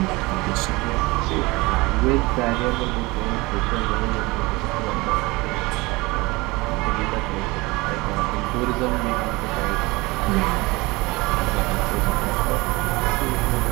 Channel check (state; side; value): quieter; left; 23.1 dB